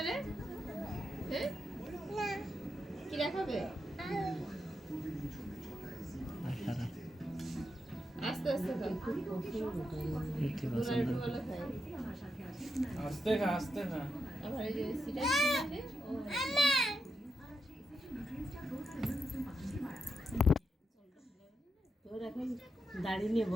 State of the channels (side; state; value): both; normal; correlation 0.84